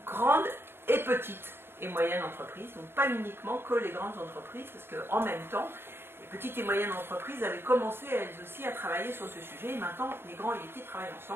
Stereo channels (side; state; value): left; late; 0.11 ms